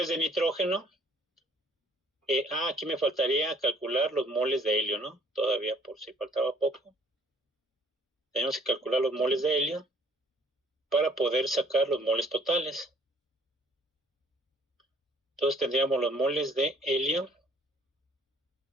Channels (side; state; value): both; normal; correlation 0.60